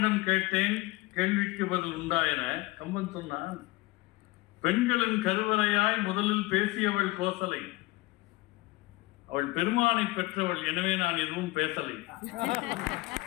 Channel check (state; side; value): quieter; right; 20.7 dB